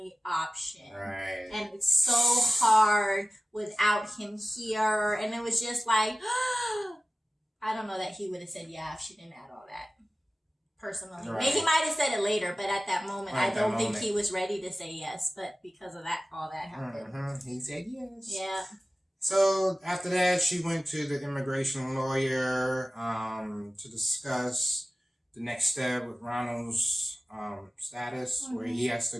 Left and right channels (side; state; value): both; normal; correlation 0.96